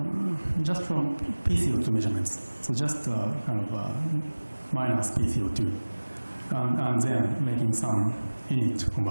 from PCO2 measurements. So just kind of minus PCO2, and then making some init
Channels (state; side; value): inverted; both; correlation -1.00